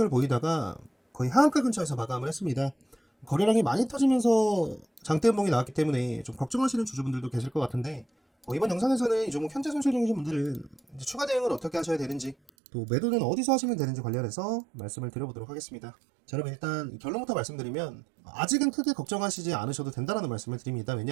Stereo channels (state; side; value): drops out; left; at 12.5 s